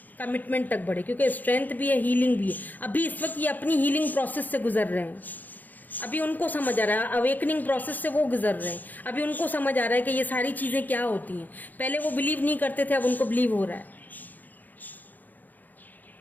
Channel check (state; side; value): late; right; 0.084 ms